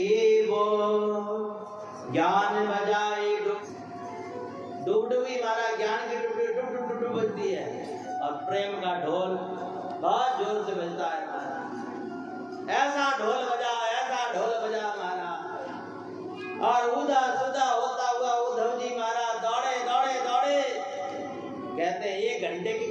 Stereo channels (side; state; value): both; identical; correlation 1.00